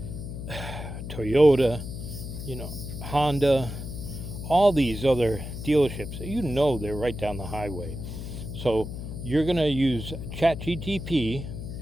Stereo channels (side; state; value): left; noise; hum, 8 dB below the sound